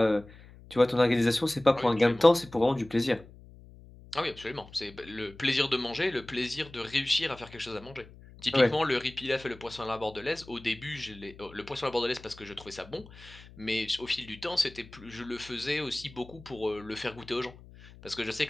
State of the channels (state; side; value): noise; left; hum, 20 dB below the sound